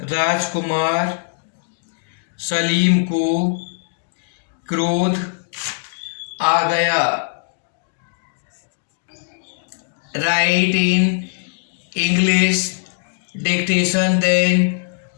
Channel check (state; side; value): silent; right; digital silence